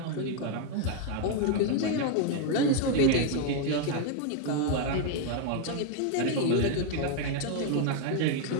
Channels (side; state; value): both; different; correlation 0.01